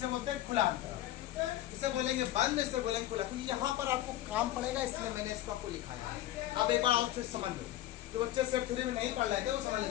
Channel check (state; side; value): quieter; right; 14.3 dB